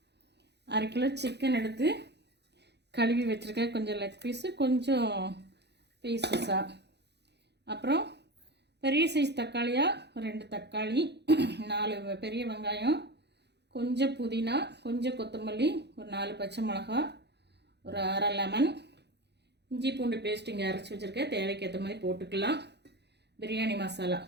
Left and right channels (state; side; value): late; left; 0.49 ms